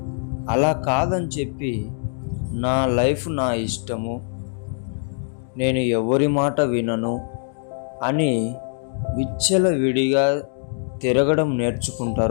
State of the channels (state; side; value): silent; right; digital silence